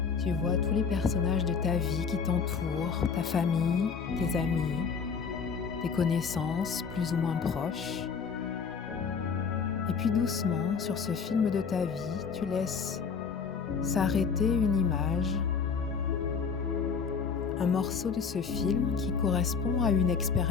Tu vois tous les personnages de ta vie qui t'entourent, ta famille, tes amis, tes connaissances plus ou moins proches. Et puis doucement, sur ce film de ta vie, tu laisses s'arrêter une image, un morceau de ce film qui correspond à une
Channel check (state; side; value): quieter; right; 5.9 dB